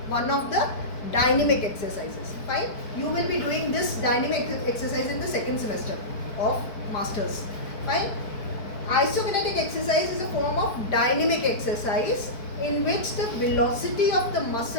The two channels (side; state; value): right; late; 4.6 ms